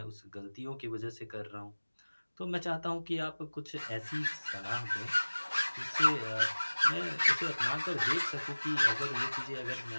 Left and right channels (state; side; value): inverted; both; correlation -1.00